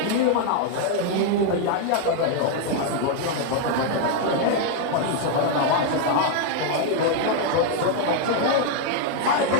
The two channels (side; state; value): both; different; correlation 0.00